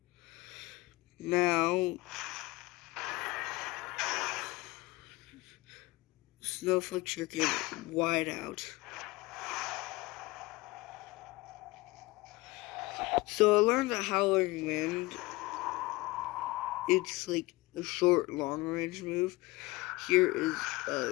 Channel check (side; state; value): right; quieter; 22.0 dB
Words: Now, Snowflake Shuriken wide out. So I learned that Howling Wind, it's like a short, long-range move. Here is